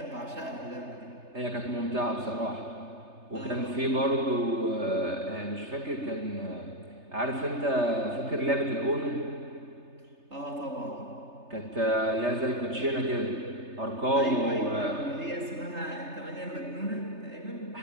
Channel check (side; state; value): left; late; 3.3 ms